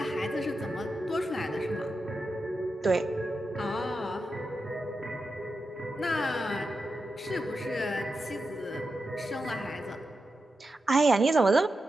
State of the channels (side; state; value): both; normal; correlation 0.89